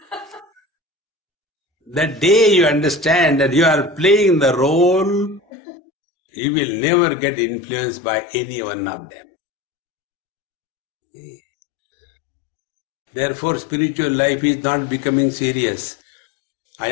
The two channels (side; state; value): right; drops out; at 5.4 s